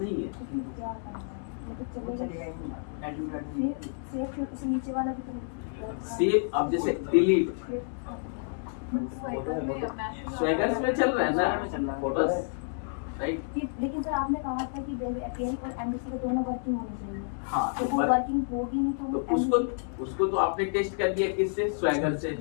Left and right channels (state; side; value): silent; right; digital silence